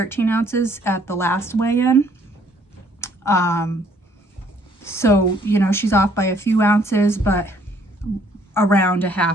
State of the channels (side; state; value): both; normal; correlation 0.63